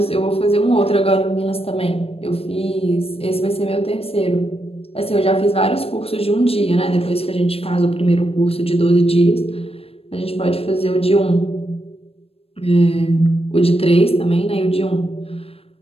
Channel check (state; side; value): late; right; 0.28 ms